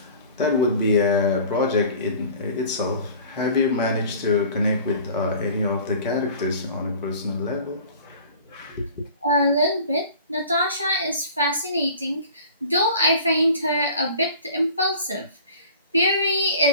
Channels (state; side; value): inverted; both; correlation -0.44